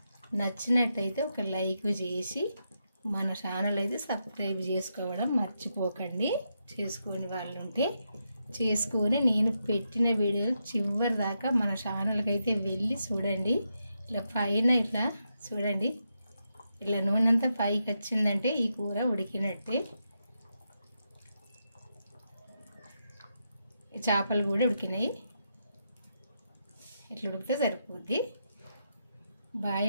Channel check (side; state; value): both; inverted; correlation -0.84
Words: నచ్చినట్టయితే ఒక లైక్ చేసి మన ఛానల్ అయితే సబ్స్క్రైబ్ చేసుకోవడం మర్చిపోకండి. చేసుకొని వాళ్ళు ఉంటే చేసుకొని నేను పెట్టిన వీడియోలు చివరి దాకా మన ఛానల్కి అయితే వెళ్ళి చూడండి. ఇట్లా పైన ఇట్లా చూడండి, ఇట్లా నూనె అంతా పైకి వచ్చిందంటే ఈ కూర ఉడికినట్టే. చేపలు కూడా ఉడికినాయి, ఇట్లా ఉడికితే సరిపోద్ది. బాయ్